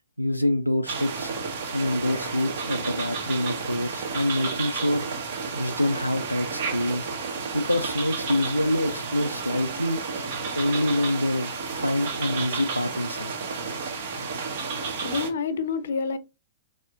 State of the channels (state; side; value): inverted; both; correlation -0.80